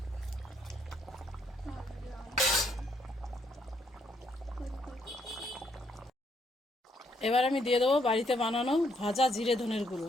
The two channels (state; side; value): normal; both; correlation 0.72